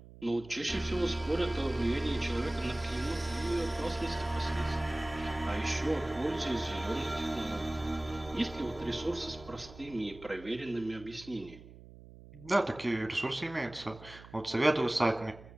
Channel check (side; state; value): right; noise; hum, 18 dB below the sound